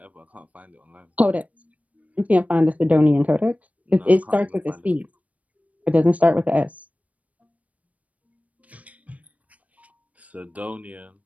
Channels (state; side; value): late; left; 0.069 ms